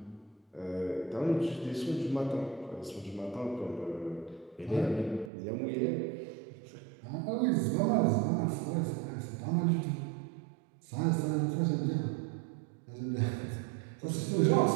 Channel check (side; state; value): left; drops out; at 5.3 s